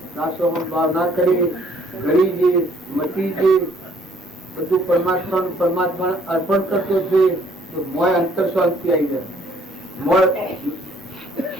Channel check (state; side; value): normal; both; correlation 0.62